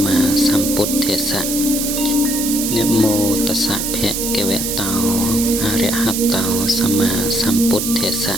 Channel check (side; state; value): right; noise; hiss, 2 dB below the sound